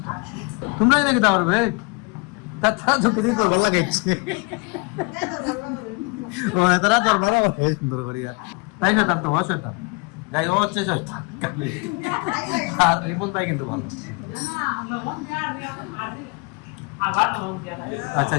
তোমরাই নাকি তা পারবে, তাছাড়া ঝুঁকে দিয়ে তোর ভালো লাগে ও তারা তোর ভালো লাগে সুন্দর করিয়া, তাই না? তার তো হয় শয়তান, যাই ও হচ্ছে শয়তান আর রিপন তাই কিন্তু ভালো। আচ্ছা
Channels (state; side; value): quieter; right; 30.3 dB